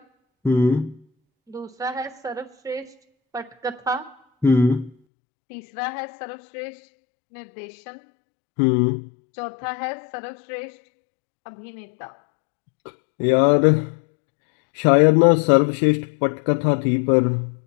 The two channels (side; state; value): right; drops out; at 5.0 s